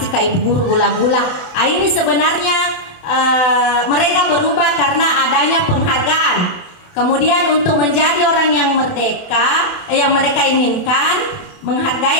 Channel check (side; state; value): right; late; 28 ms